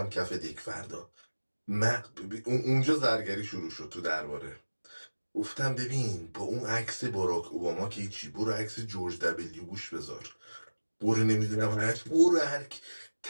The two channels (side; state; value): both; inverted; correlation -1.00